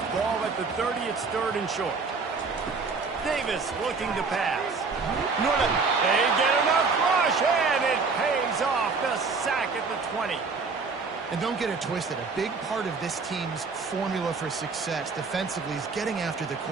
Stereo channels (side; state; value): left; quieter; 4.6 dB